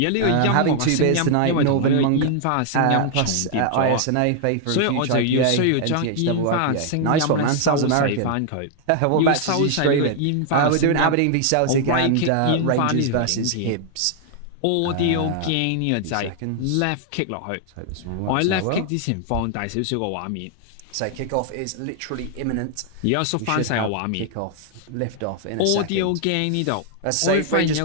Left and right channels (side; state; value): both; different; correlation 0.00